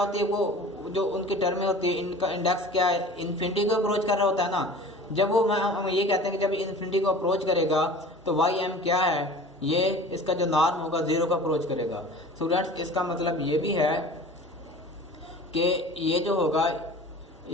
है, वो जो उनकी टर्में होती है इनका इंडेक्स क्या है, इन्फिनिटी को अप्रोच कर रहा होता है ना। जब वो हम ये कहते हैं कि जब इन्फिनिटी को अप्रोच करेगा तो y m क्या है, ये इसका जो नॉर्म होगा 0 को अप्रोच करेगा। स्टूडेंट्स, इसका मतलब ये भी है कि ये जो होगा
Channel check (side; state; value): both; normal; correlation 0.41